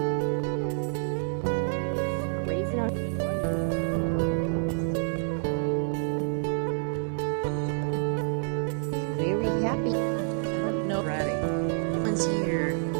Very happy. I don't know. Ready. One's here.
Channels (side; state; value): left; silent; 59 dB below the other